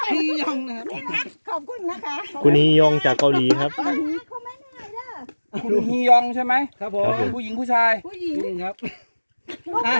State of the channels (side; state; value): both; inverted; correlation -1.00